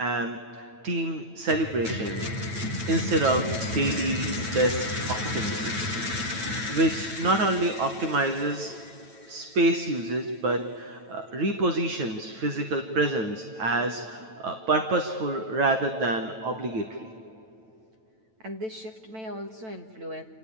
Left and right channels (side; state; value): left; late; 9.1 ms